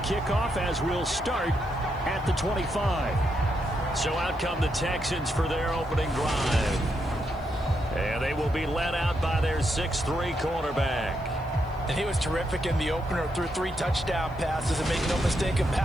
as we'll start at the 25. So out come the Texans for their opening drive. And they will be led out by their 6'3" quarterback. And he was terrific in the opener, threw 3 touchdown passes, and make no mistake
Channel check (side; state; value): left; noise; hiss, 30 dB below the sound